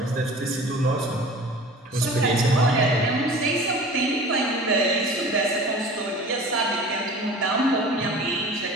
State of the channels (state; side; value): normal; both; correlation 0.41